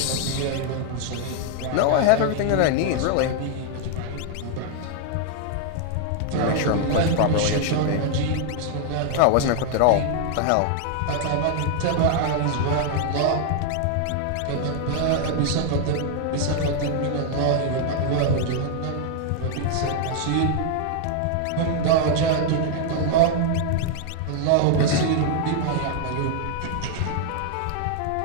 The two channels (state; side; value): different; both; correlation 0.00